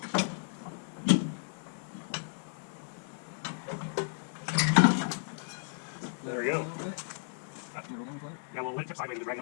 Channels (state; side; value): silent; right; 55 dB below the other